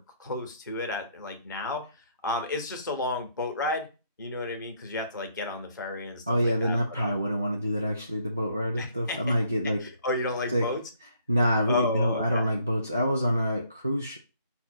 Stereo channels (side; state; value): both; inverted; correlation -0.68